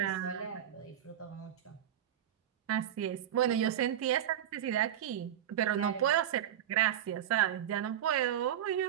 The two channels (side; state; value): left; quieter; 10.5 dB